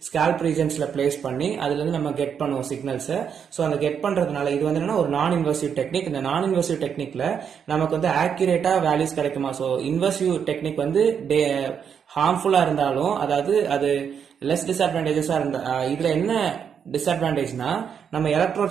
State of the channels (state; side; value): quieter; left; 7.5 dB